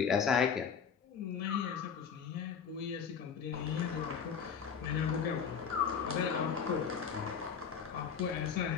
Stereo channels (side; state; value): right; quieter; 6.8 dB